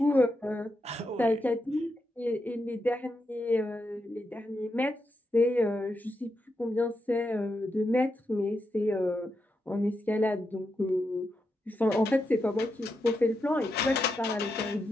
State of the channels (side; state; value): both; normal; correlation 0.85